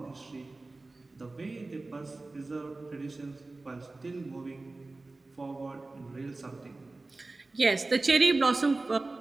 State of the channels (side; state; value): left; quieter; 3.2 dB